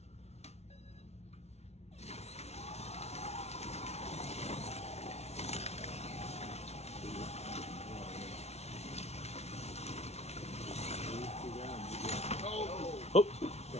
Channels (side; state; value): right; late; 0.31 ms